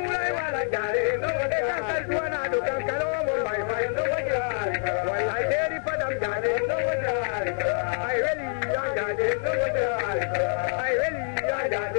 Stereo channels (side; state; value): right; silent; 56 dB below the other